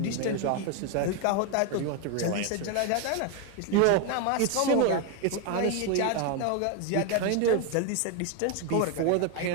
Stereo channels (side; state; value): both; different; correlation 0.01